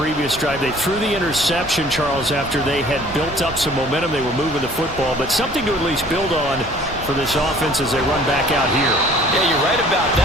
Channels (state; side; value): noise; right; rumble, 14 dB below the sound